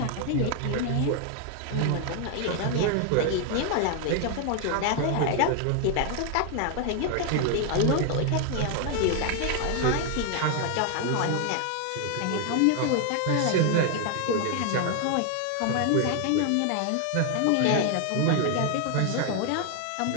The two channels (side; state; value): both; different; correlation 0.00